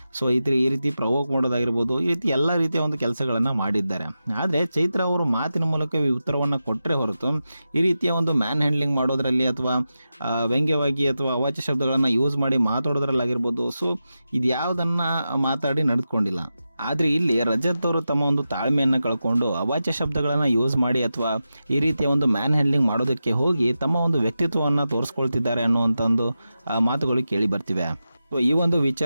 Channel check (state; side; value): inverted; both; correlation -0.91